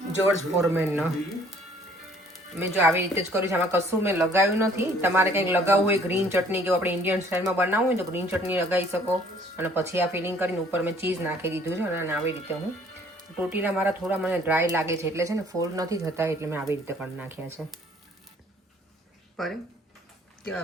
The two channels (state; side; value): normal; both; correlation 0.58